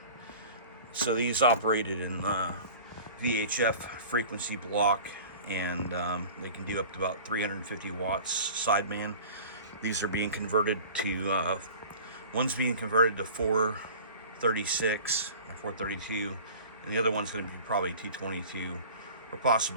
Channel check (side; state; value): both; inverted; correlation -0.41